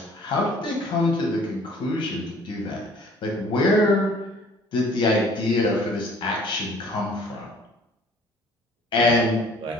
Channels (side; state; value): both; normal; correlation 0.54